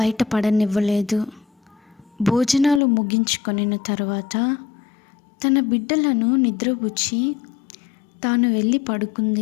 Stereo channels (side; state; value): right; drops out; at 2.8 s